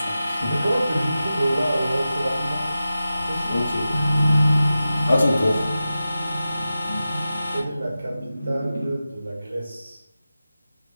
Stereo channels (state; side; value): inverted; both; correlation -0.93